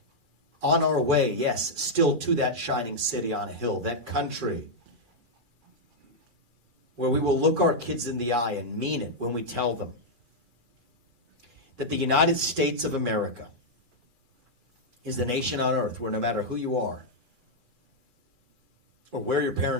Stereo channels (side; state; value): left; late; 2.4 ms